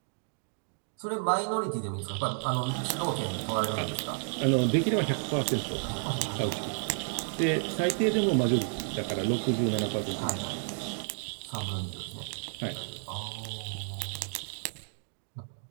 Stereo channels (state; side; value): silent; left; 57 dB below the other